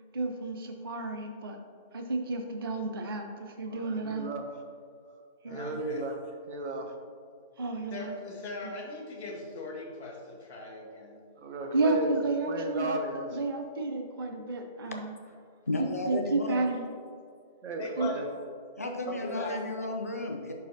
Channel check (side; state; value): both; inverted; correlation -0.50